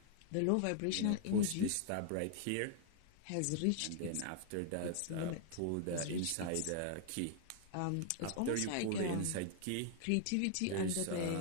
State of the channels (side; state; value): both; different; correlation 0.00